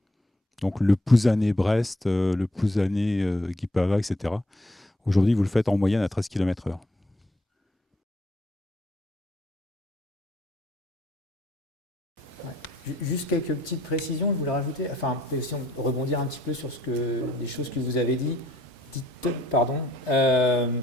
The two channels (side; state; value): both; normal; correlation 0.66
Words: Donc le Plouzané-Brest, le Plouzané-Guipava, etc. Aujourd'hui, vous le faites en moyenne à 13 km/h. Juste quelques petites précisions, je voulais rajouter, enfin, aussi rebondir un petit peu sur des choses que vous avez dites.